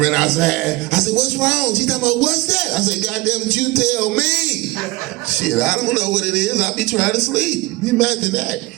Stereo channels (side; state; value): left; quieter; 21.0 dB